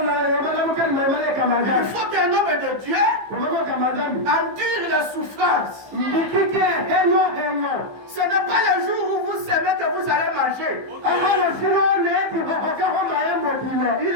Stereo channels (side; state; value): left; late; 15 ms